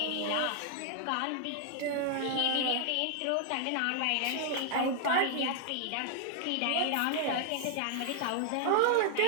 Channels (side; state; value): both; different; correlation 0.00